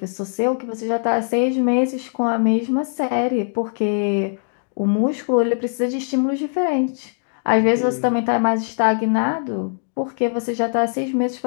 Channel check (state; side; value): silent; right; digital silence